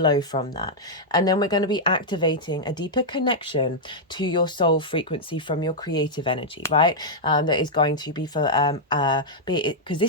from that. And then we're going to be activating a deeper connection to your soul frequency from your creative energy, right? That is going to be for, because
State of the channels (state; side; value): normal; both; correlation -0.05